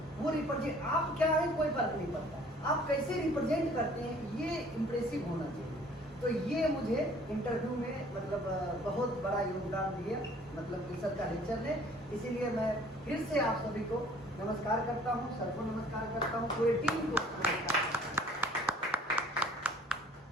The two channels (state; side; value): normal; both; correlation 0.55